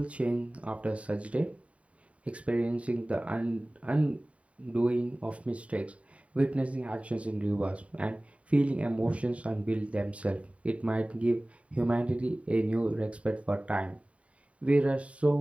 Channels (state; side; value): late; left; 0.065 ms